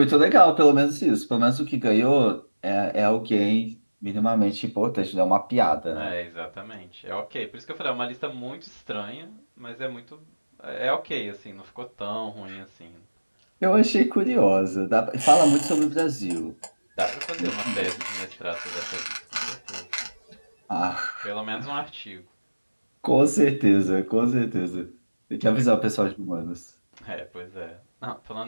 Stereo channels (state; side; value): inverted; both; correlation -1.00